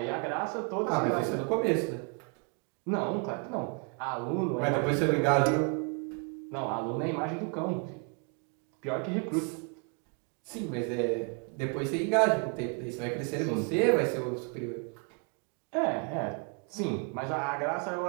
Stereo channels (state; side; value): quieter; left; 37.1 dB